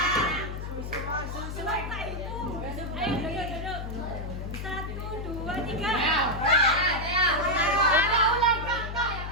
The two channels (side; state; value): left; noise; hum, 6 dB below the sound